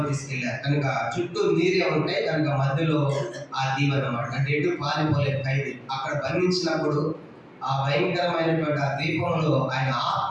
తీసుకెళ్లారు. కనుక చుట్టూ నీరే ఉంటాయి కనుక మధ్యలో ఆ దీపం అన్నమాట. అంటే ఎటు పారిపోలేదు ఖైదీ. అక్కడ బంధించినప్పుడు ఆ భయంకరమైనటువంటి ఆ దీపంలో ఆయన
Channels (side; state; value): both; identical; correlation 1.00